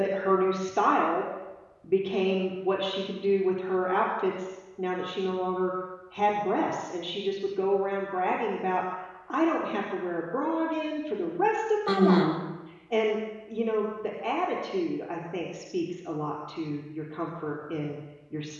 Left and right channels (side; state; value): both; identical; correlation 1.00